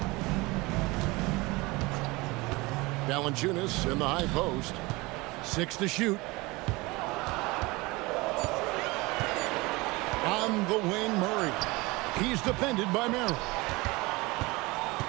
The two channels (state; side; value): quieter; left; 23.2 dB